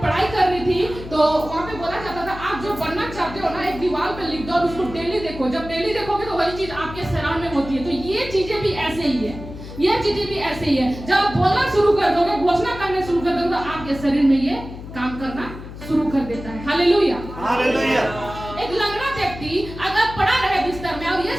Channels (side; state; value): left; noise; hum, 12 dB below the sound